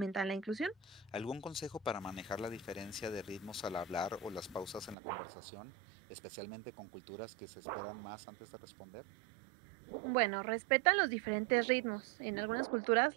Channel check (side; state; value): left; drops out; at 5.0 s